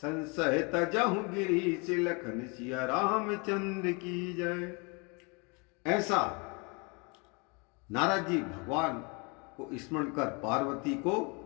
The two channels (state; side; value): quieter; right; 31.3 dB